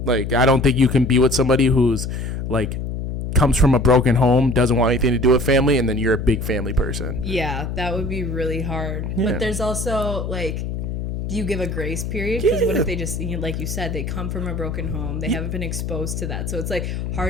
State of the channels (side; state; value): left; noise; hum, 4 dB below the sound